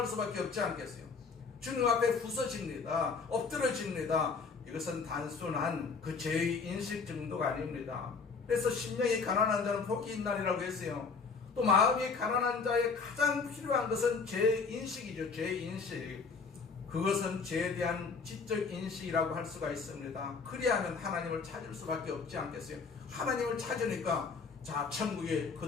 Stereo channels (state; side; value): quieter; right; 4.9 dB